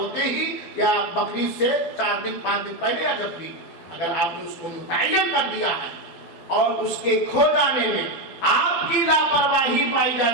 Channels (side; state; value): right; late; 12 ms